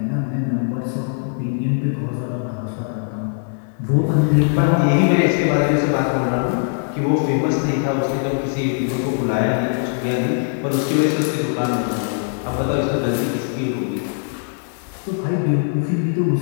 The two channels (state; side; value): silent; right; digital silence